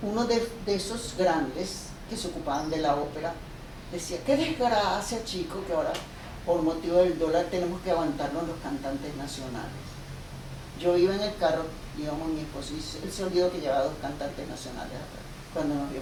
uno de esos grandes que se ocupaban de la ópera decía, qué desgracia, chico, que ahora por motivo del dólar tenemos que aguantarnos los cantantes nacionales. Yo iba en el carro, íbamos mi esposo, y él se olvidó que llevaba 2 cantantes nacionales atrás. Cuando nos vio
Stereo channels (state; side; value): identical; both; correlation 1.00